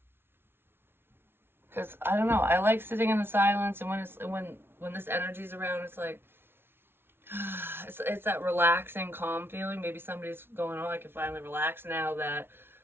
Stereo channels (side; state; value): left; late; 0.11 ms